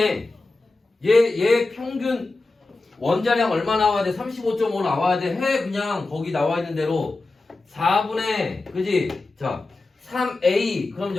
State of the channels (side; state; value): right; quieter; 3.3 dB